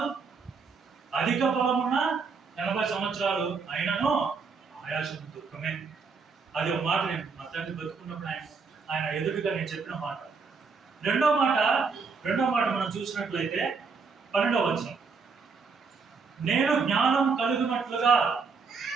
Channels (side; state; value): left; quieter; 5.0 dB